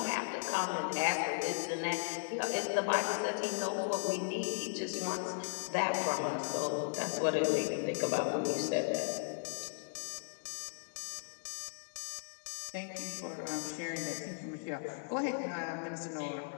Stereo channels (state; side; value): silent; right; digital silence